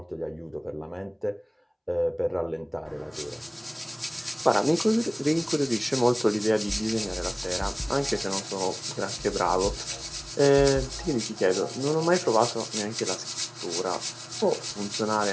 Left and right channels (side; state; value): both; identical; correlation 1.00